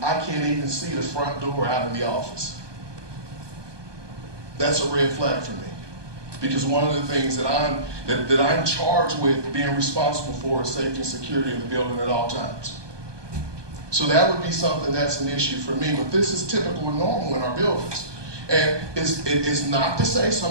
I can't even see the front door out of the office. That's a red flag for me. Because one of the things that I'm charged with being responsible for is safety and security of the building at all times. So that would be something that's an issue for me, but this is typical and normal in our buildings. And it's not to say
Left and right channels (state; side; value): late; left; 1.2 ms